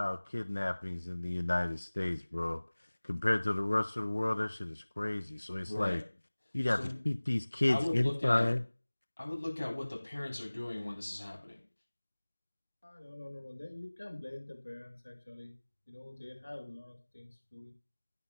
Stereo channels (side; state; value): both; inverted; correlation -1.00